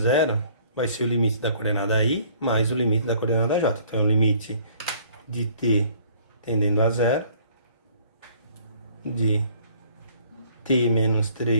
vai ser o limite da coordenada i mais o limite da coordenada j. Então, é o limite de t tendendo a 0 de t menos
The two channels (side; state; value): both; inverted; correlation -0.57